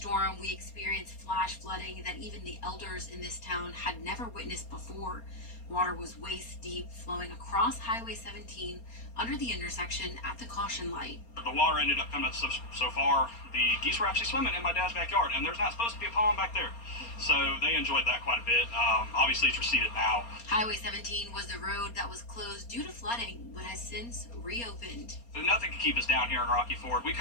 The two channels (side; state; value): right; late; 4.3 ms